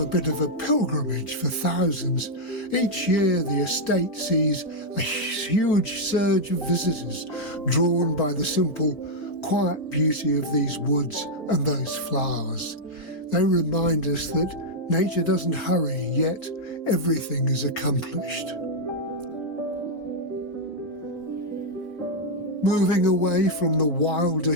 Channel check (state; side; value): normal; both; correlation -0.03